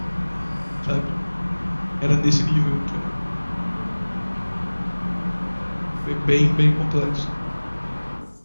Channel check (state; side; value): inverted; both; correlation -1.00